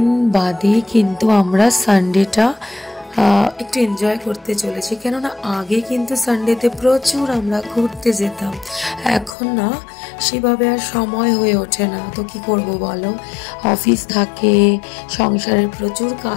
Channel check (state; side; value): drops out; right; at 9.3 s